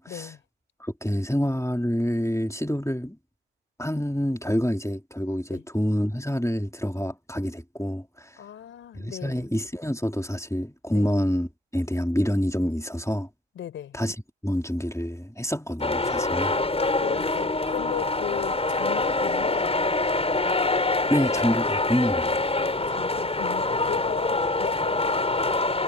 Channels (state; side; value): normal; both; correlation 0.53